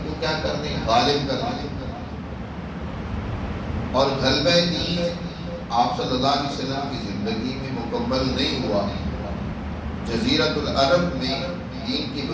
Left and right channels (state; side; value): identical; both; correlation 1.00